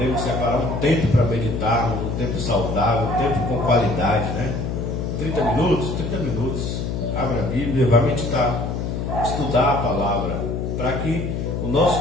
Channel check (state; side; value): noise; left; hum, 3 dB below the sound